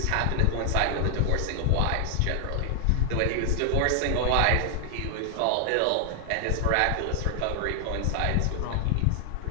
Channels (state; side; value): different; both; correlation 0.00